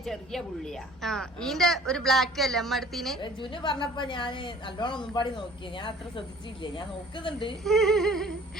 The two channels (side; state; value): left; noise; hum, 24 dB below the sound